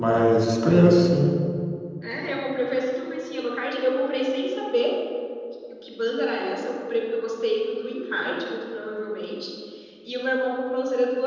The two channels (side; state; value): both; identical; correlation 1.00